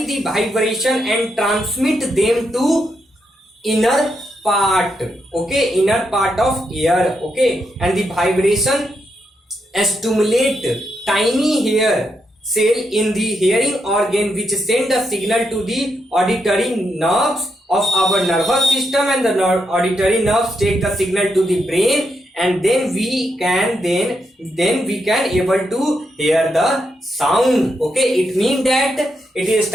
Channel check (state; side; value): normal; both; correlation 0.81